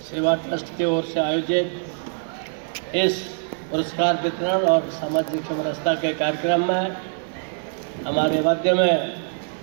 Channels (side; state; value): left; silent; 63 dB below the other